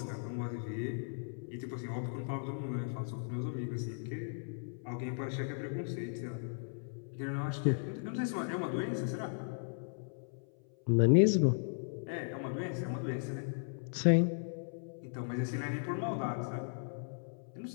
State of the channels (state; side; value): silent; right; 53 dB below the other